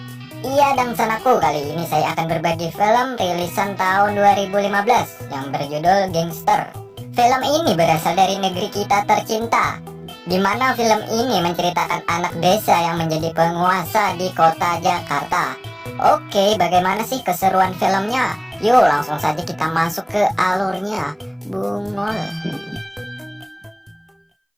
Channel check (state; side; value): identical; both; correlation 1.00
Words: Iya, dan sanaku, kali ini saya akan berbagi film rilisan tahun 2015 yang berjudul Gangster. Film ini berasal dari negeri kita tercinta, di mana film ini menceritakan anak desa yang menjadi penguasa di kota Jakarta. Oke, bagaimana sih keseruan filmnya? Yuk langsung saja kita masuk ke alurnya. Bungol.